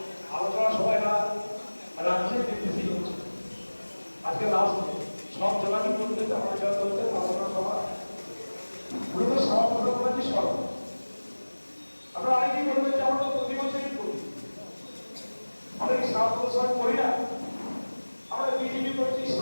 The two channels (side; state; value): both; inverted; correlation -1.00